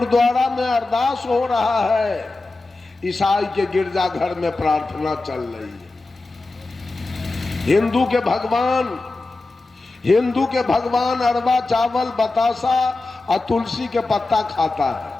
में अरदास हो रहा है, ईसाई के गिरजा घर में प्रार्थना चल रही है। हिंदू के भगवान अरवा चावल बतासा और तुलसी के पत्ता खाता है।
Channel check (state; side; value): quieter; right; 3.3 dB